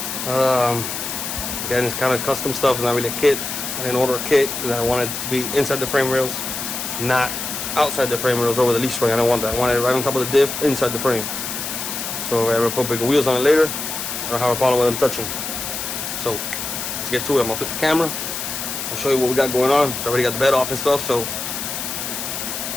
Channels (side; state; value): left; noise; hiss, 5 dB below the sound